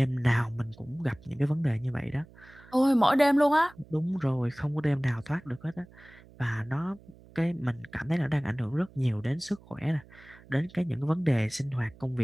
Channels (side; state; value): right; noise; hum, 24 dB below the sound